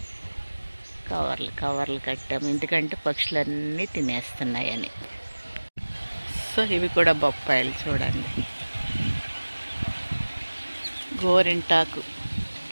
కవర్లు కట్టాము ఎందుకంటే పక్షులన్నీ తినేస్తున్నాయని. సో ఇవి కూడా బొప్పాయిలు చూడండి. గోరింటాకు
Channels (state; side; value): inverted; both; correlation -1.00